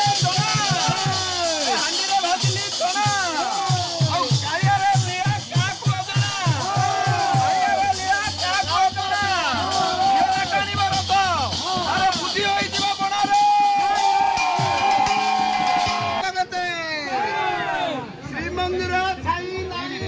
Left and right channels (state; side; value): identical; both; correlation 1.00